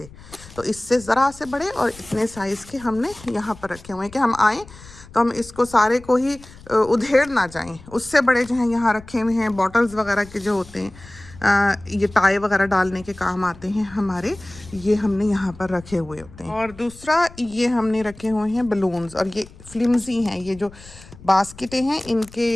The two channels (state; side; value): noise; left; rumble, 20 dB below the sound